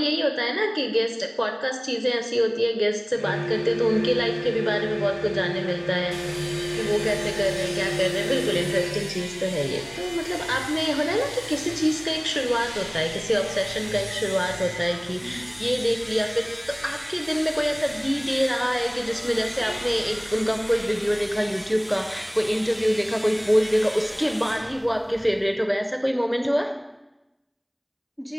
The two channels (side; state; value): both; identical; correlation 1.00